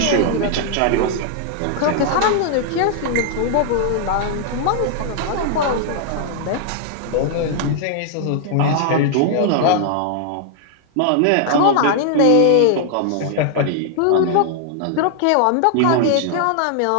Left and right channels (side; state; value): both; different; correlation 0.00